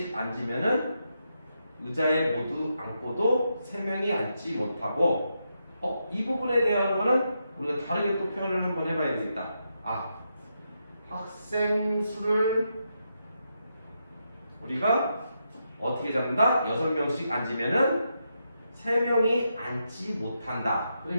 앉으면은 의자에 모두 앉고도 3명이 앉지 못하고, 이 부분에 대한 거는 우리가 다르게 또 표현을 한번 해봐야 되겠다. 학생 수를 우리가 어떻게 잡는다? 6명씩 앉으면은 3명이 앉지 못한다.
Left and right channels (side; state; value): both; inverted; correlation -0.84